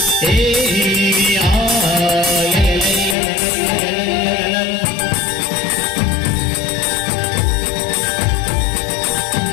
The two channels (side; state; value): right; drops out; at 3.2 s